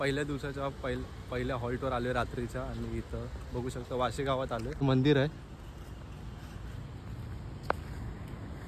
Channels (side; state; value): both; identical; correlation 1.00